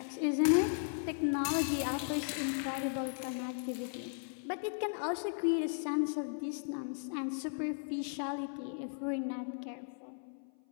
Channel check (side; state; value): right; silent; 54 dB below the other